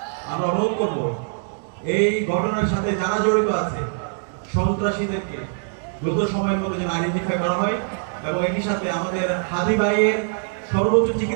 আমরা অনুরোধ করব এই ঘটনার সাথে যারা জড়িত আছে সন্ত্রাসীদেরকে দ্রুত সময়ের মধ্যে যেন আইডেন্টিফাই করা হয় এবং একই সাথে আমাদের হাদি ভাইয়ের সর্বোচ্চ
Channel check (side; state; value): left; silent; 63 dB below the other